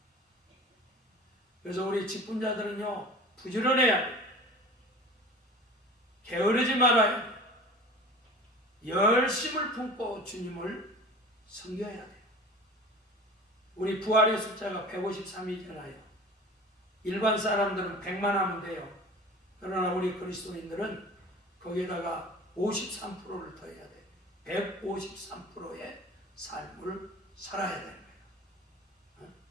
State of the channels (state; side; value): normal; both; correlation 0.39